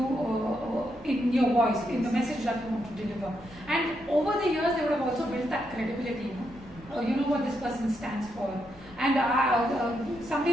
in your voice, in the message that you want to deliver. And over the years, they would have also built that credibility. You know what this person stands for. And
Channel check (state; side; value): normal; both; correlation 0.80